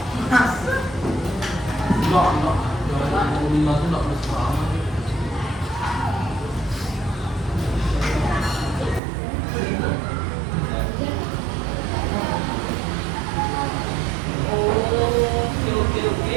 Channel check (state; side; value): drops out; left; at 9.0 s